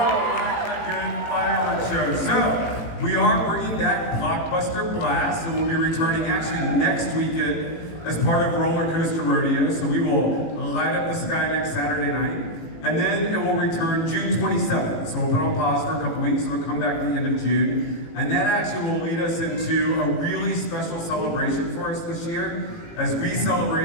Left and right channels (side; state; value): right; late; 18 ms